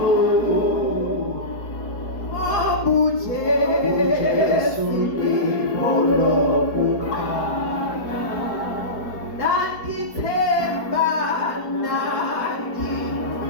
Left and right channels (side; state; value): right; late; 4.7 ms